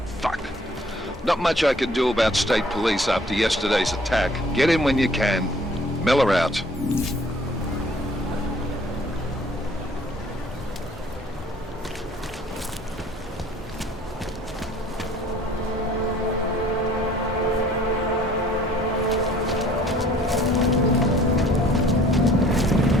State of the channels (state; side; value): normal; both; correlation 0.56